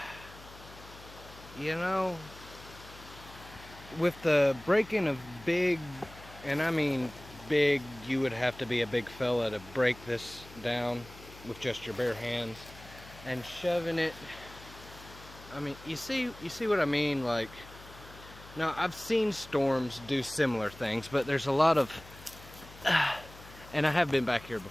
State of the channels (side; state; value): left; noise; hum, 18 dB below the sound